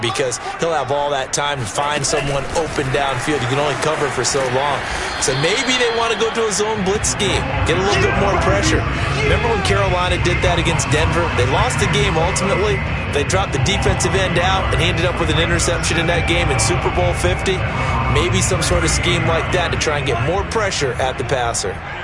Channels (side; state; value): both; identical; correlation 1.00